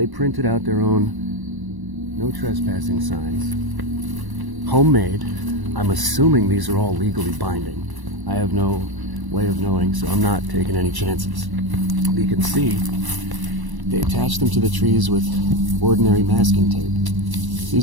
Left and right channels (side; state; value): left; late; 1.0 ms